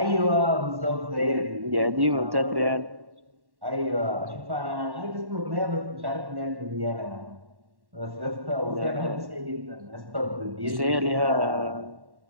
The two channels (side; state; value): left; late; 1.1 ms